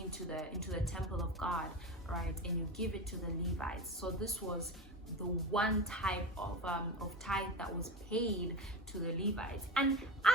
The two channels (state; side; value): normal; both; correlation 0.25